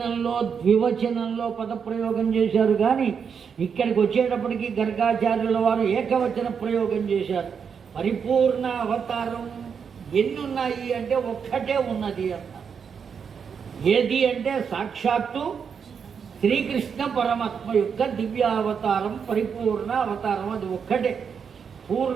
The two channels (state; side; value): quieter; left; 6.7 dB